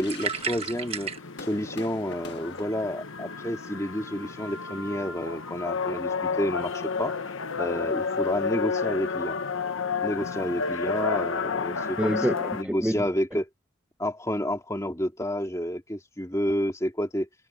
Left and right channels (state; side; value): normal; both; correlation 0.44